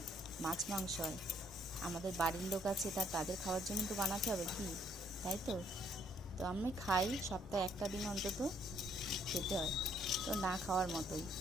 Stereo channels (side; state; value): both; normal; correlation 0.67